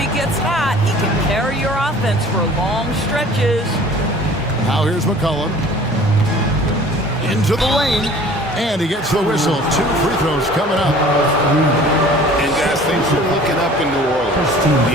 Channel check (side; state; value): both; normal; correlation 0.48